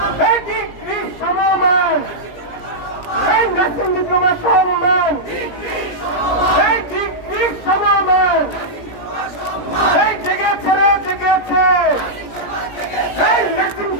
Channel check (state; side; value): late; right; 17 ms